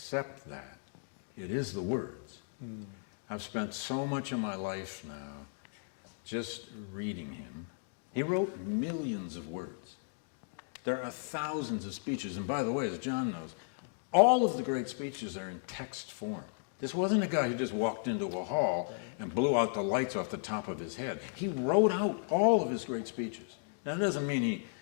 that it is the words. I've spent so much of my life now just reading him. He wrote millions of words. There are thousands of speeches. And by the way, as John knows, all of the great speeches are in text form. This wasn't a guy who just walked into a hall and blew out the lights off the top of his head. He wrote out all of his great speeches. Now, that doesn't mean he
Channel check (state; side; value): silent; right; digital silence